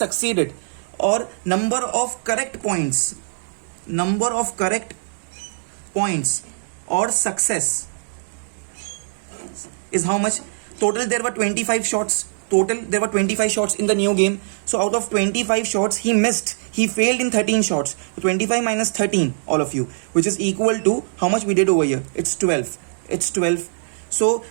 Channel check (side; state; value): left; silent; digital silence